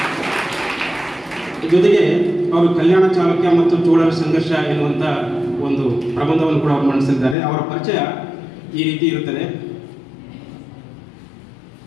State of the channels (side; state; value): right; drops out; at 7.4 s